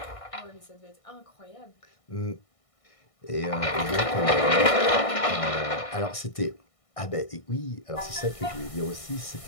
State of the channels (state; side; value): late; right; 1.6 ms